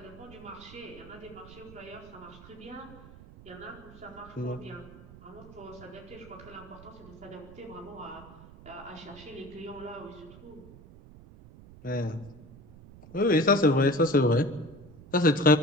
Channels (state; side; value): noise; right; rumble, 19 dB below the sound